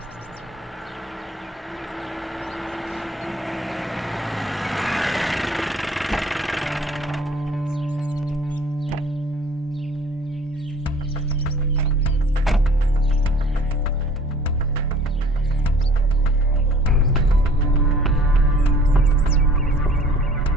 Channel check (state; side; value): normal; both; correlation 0.51